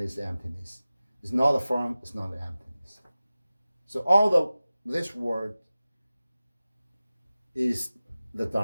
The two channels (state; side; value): inverted; both; correlation -0.96